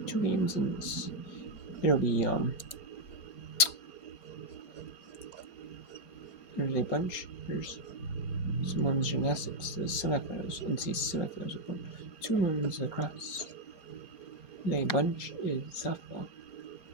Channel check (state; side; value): late; right; 4.3 ms